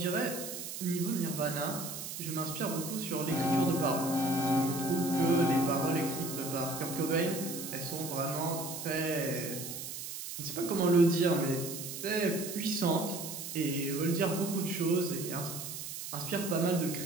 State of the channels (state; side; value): noise; right; hiss, 7 dB below the sound